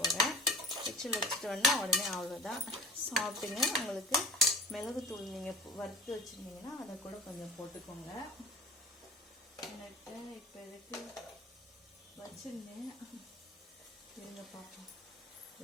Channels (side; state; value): both; normal; correlation 0.41